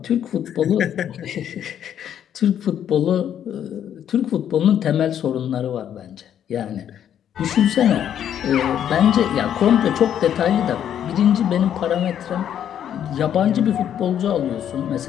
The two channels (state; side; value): quieter; right; 9.7 dB